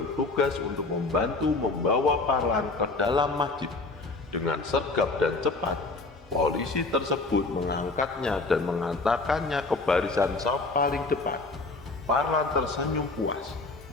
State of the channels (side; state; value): right; quieter; 3.4 dB